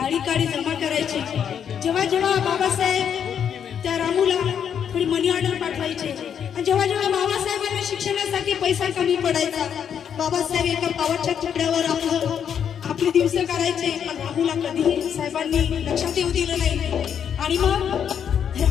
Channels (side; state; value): right; quieter; 8.3 dB